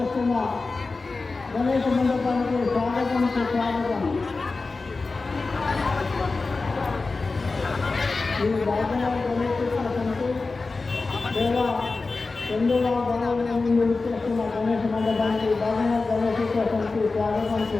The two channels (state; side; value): quieter; right; 3.8 dB